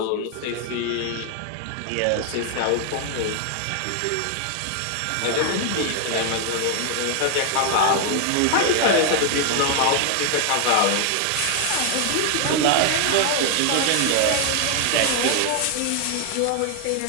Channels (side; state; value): both; different; correlation 0.00